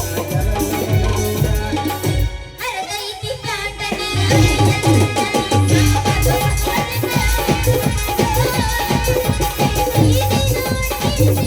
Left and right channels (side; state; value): both; identical; correlation 1.00